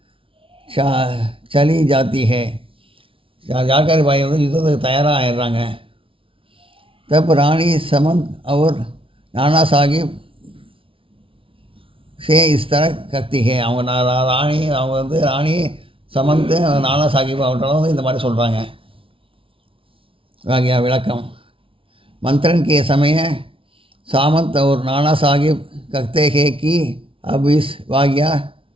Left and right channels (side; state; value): left; late; 0.26 ms